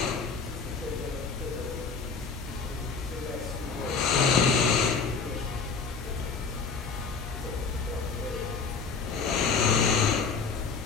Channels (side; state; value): right; quieter; 5.1 dB